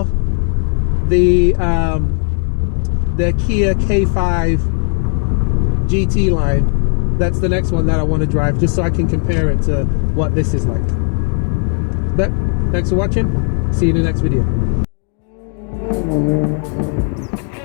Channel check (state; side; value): quieter; right; 39.7 dB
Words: the Kia K5 GT line. That's the next one that I want to drive, just so I can compare it to what this is like. But thanks for watching. See you in the next video.